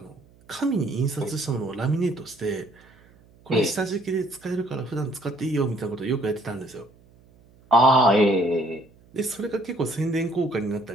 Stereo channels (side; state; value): right; noise; hum, 28 dB below the sound